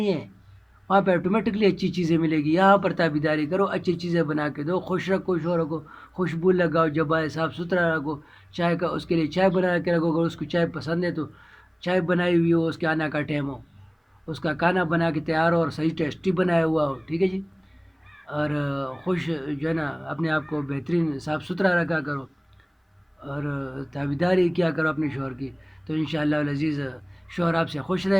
ہیں، وہاں پہ آٹومیٹکلی اچھی چیزیں ملے گی۔ یہاں پر تابیداری کرو، اچھی چیزیں بنا کے دو، خوش رکھو شوہر کو، خوشبو لگاؤ، جب آئے صاف ستھرا رکھو، چائے کا اس کے لیے چائے بنا کے رکھو، اگر اس کو چائے پسند ہے تو چائے بنائی ہوئی ہو، اس کے آنا کا ٹائم ہو، اس کا کھانا بنا کے تیار ہو اور صحیح ٹیسٹی بنایا ہوا ہو، ٹھیک ہے جی، اور خوش جو ہے نا اپنے آپ کو بہترین صاف ستھرا رکھا کرو اور تابیداری کیا کرو اپنے شوہر کی، تو انشاءاللہ العزیز شوہر آپ سے خوش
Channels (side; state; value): both; identical; correlation 1.00